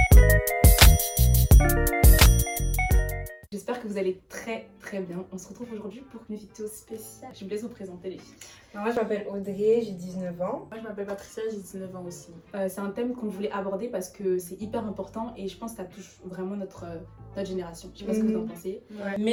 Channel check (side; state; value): both; identical; correlation 1.00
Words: J'espère que vous allez très très bien. On se retrouve aujourd'hui pour une vidéo spéciale. Je vous laisse vous présenter les filles. Moi, je m'appelle Audrey, j'ai 19 ans. Moi je m'appelle Patricia, j'ai 19 ans aussi. C'est un thème qu'on voulait aborder parce que c'est hyper important et je pense que ça touche vraiment notre génération. Je sais pas ce que vous en pensez. Ouais.